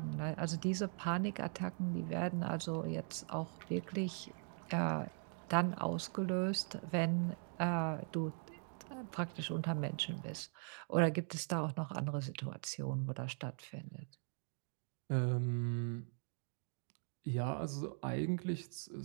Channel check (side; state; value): left; silent; 51 dB below the other